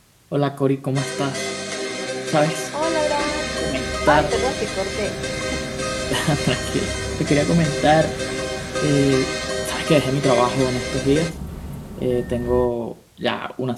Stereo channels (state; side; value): identical; both; correlation 1.00